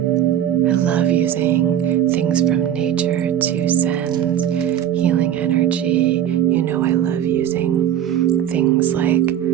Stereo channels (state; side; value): quieter; left; 10.4 dB